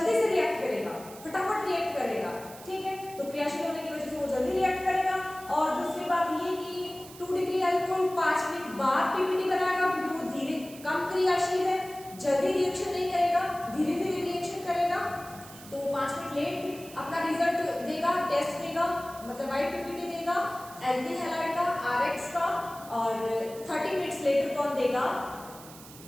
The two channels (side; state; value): right; noise; hiss, 18 dB below the sound